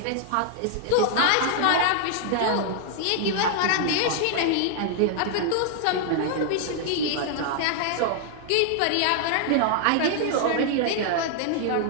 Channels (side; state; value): both; different; correlation 0.00